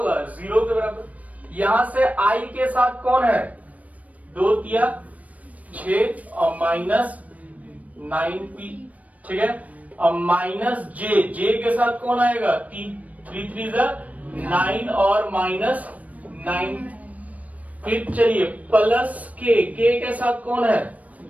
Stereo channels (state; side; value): late; left; 0.070 ms